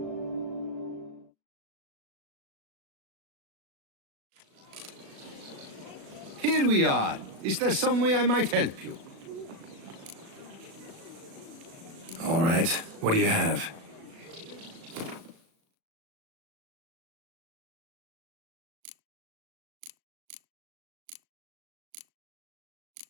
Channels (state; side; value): late; left; 36 ms